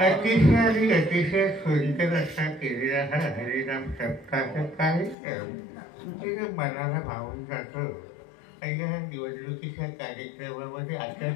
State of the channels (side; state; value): right; drops out; at 5.2 s